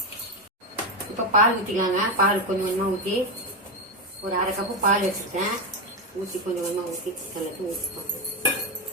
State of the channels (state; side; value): normal; both; correlation 0.10